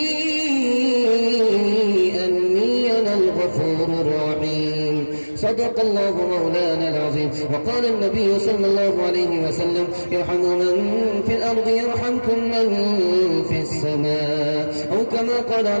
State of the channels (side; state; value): both; inverted; correlation -1.00